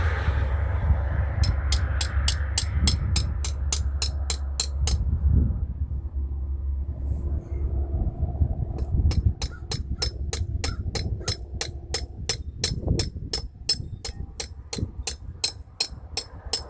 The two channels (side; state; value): both; identical; correlation 1.00